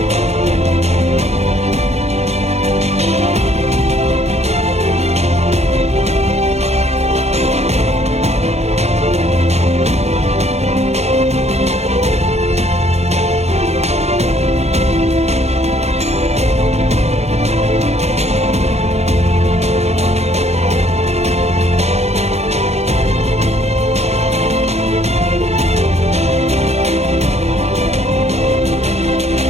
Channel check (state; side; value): late; left; 0.31 ms